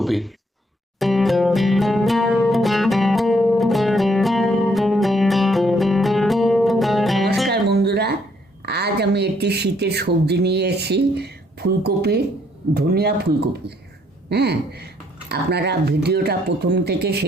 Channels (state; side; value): normal; both; correlation 0.69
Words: নমস্কার বন্ধুরা, আজ আমি একটি শীতের সবজি নিয়ে এসেছি, ফুলকপি, ধনিয়া ফুলকপি। হ্যাঁ, আপনারা ভিডিওটা প্রথম থেকে